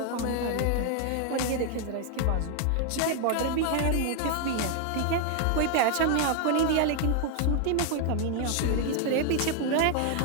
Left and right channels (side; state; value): both; different; correlation 0.00